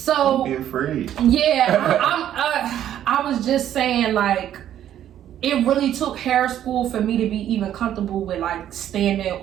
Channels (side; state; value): left; quieter; 11.0 dB